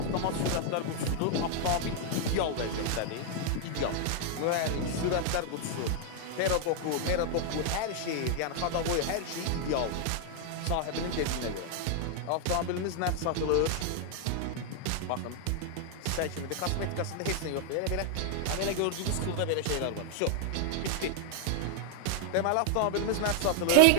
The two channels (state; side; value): different; both; correlation 0.00